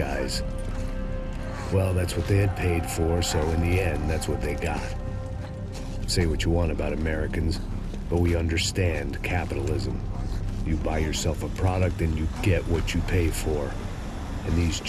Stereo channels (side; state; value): both; identical; correlation 1.00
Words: Well, that's what they had paid for, so in the end, that's what they got. Say what you want about Americans, but we understand capitalism. You buy yourself a product and you get what you pay for. And these